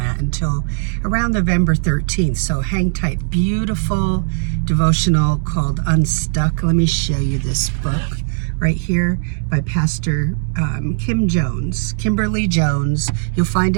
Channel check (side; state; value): left; silent; digital silence